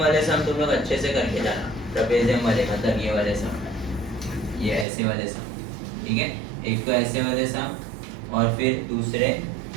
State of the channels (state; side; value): drops out; left; at 4.9 s